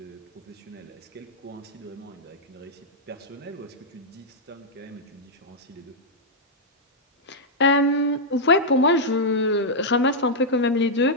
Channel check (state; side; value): normal; both; correlation -0.06